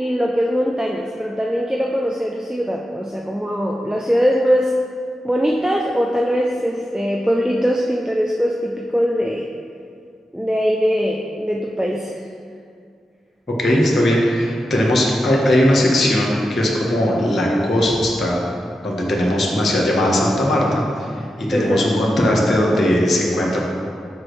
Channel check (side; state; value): both; normal; correlation 0.89